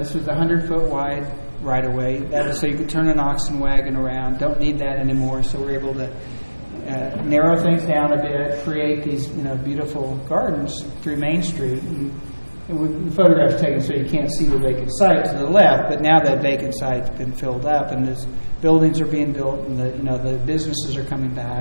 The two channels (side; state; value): both; inverted; correlation -1.00